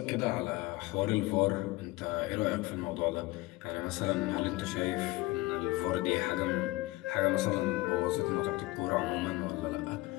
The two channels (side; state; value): right; quieter; 20.7 dB